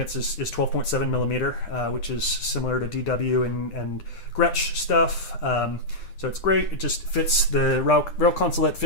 is 12.7 millimeter, which is similar to DW and Gretsch stuff. So it's great. It just fits, the rail consolette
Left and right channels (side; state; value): right; late; 10 ms